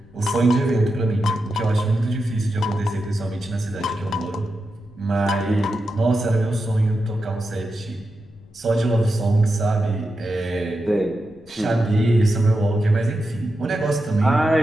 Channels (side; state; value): left; noise; rumble, 25 dB below the sound